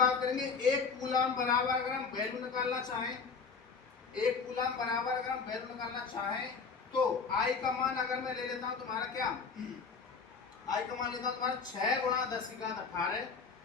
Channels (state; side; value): quieter; right; 5.3 dB